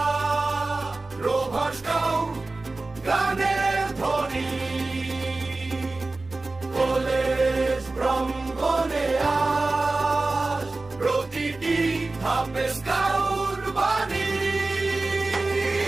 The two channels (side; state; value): left; quieter; 3.3 dB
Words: rover scout গানের ধ্বনি college প্রাঙ্গণে আজ প্রতিটি ধাপে স্কাউট বাণী।